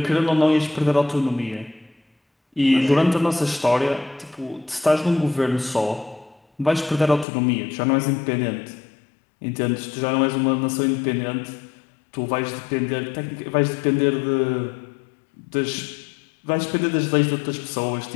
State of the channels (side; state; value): right; drops out; at 7.2 s